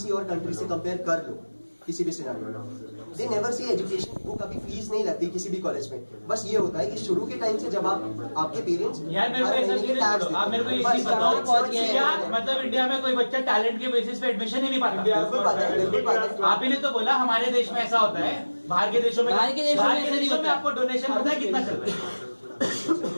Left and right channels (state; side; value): inverted; both; correlation -1.00